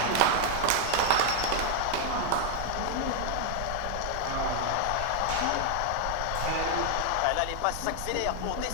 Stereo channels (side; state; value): both; different; correlation 0.00